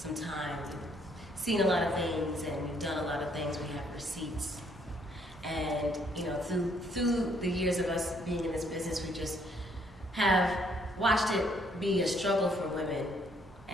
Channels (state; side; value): normal; both; correlation 0.68